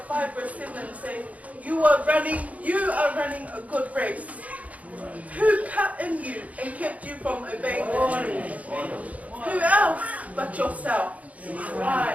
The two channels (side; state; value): left; late; 0.070 ms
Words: verse 7 says, you are running a good race. Who cut in you and kept you from obeying the truth? Who else but yourself?